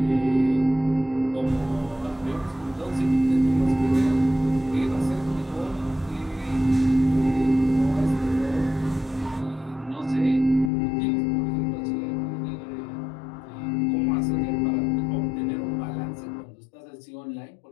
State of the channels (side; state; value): right; drops out; at 10.7 s